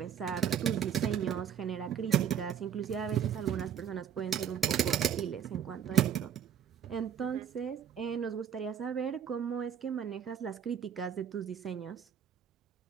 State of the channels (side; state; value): left; quieter; 8.6 dB